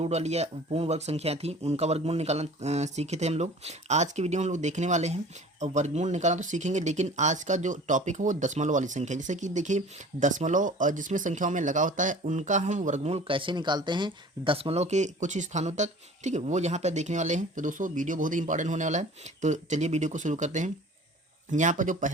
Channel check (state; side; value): normal; both; correlation 0.44